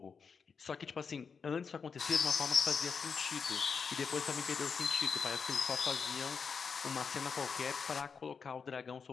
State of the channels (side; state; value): right; quieter; 5.8 dB